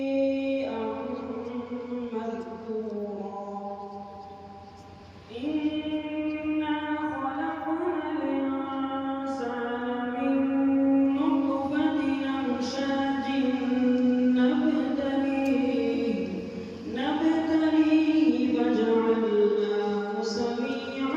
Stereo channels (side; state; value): both; identical; correlation 1.00